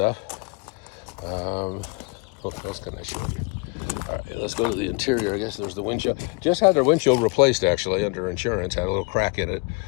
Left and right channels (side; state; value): right; quieter; 30.5 dB